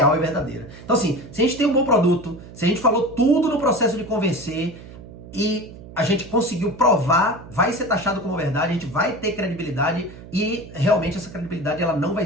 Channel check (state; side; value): noise; right; hum, 16 dB below the sound